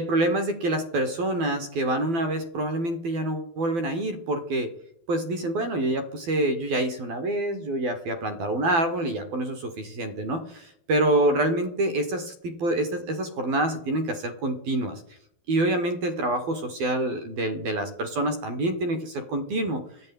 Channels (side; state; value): left; late; 12 ms